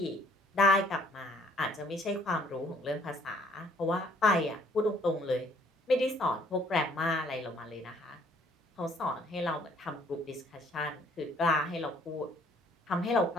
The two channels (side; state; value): both; normal; correlation 0.61